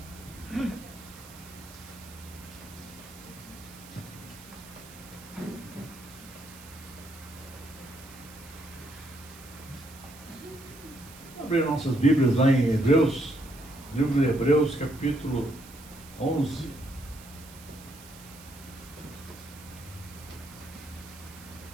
Abrir nossas Bíblias lá em Hebreus, livro de Hebreus, capítulo 11.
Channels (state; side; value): noise; right; hiss, 19 dB below the sound